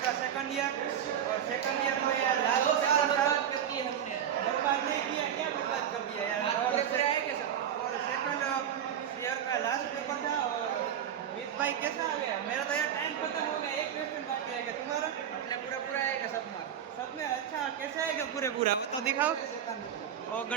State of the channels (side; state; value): left; quieter; 9.3 dB